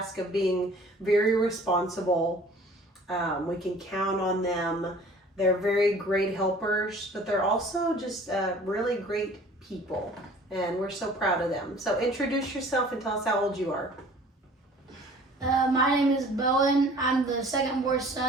of being very responsible. We can count on them. They're very great helpers, but they're also just really great people, and we're so proud of them. So introduce yourself and tell us how old you are. My name is Bowen. I'm the second-born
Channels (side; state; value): both; normal; correlation 0.50